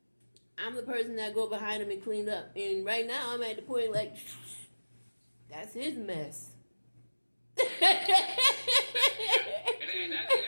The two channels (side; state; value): both; inverted; correlation -1.00